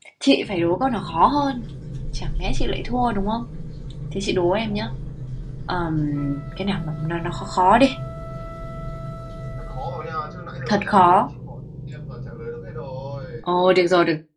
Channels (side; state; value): both; identical; correlation 1.00